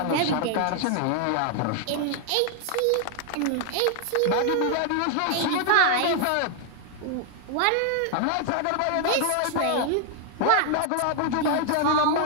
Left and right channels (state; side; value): different; both; correlation 0.00